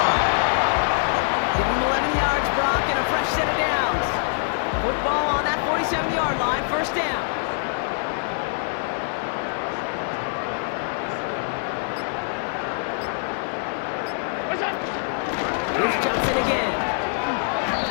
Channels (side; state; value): right; silent; digital silence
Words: Give him 11 yards, Brock, and a fresh set of downs. Football on that 47-yard line, first down. Here's Johnson again.